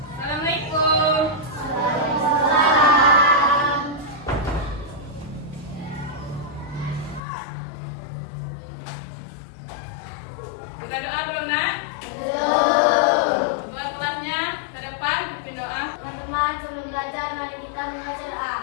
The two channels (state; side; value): drops out; right; at 7.2 s